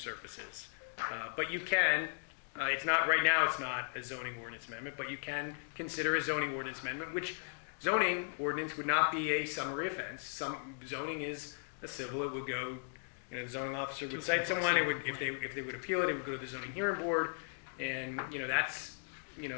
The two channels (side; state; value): right; silent; digital silence